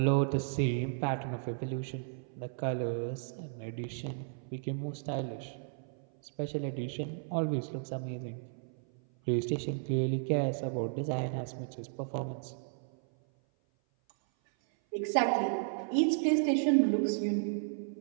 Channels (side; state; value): left; silent; 55 dB below the other